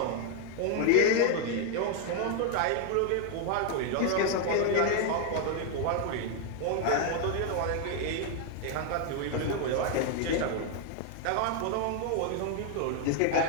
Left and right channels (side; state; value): both; different; correlation 0.00